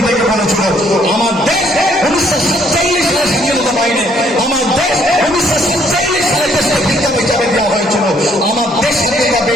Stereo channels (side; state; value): both; normal; correlation 0.66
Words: বলেছিল, আমার দেশ ১৯৪৭ সালে স্বাধীনতা পায়নি, আমার দেশ ১৯৪৭ সালে দেশকে ভিক্ষা হিসাবে দেওয়া হয়েছিল, আমার দেশ স্বাধীনতা